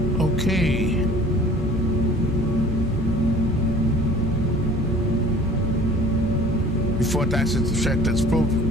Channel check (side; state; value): both; normal; correlation 0.48